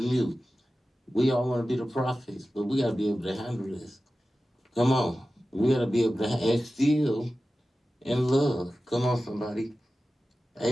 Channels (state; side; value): normal; both; correlation 0.94